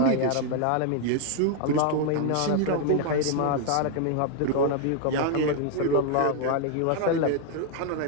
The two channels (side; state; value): both; different; correlation 0.00